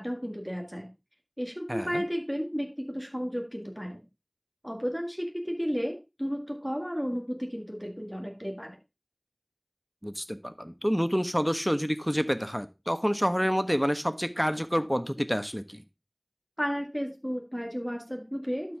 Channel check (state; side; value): identical; both; correlation 1.00